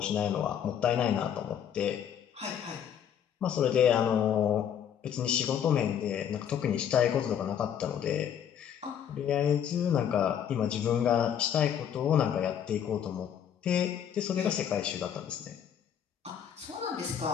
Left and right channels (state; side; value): quieter; right; 8.9 dB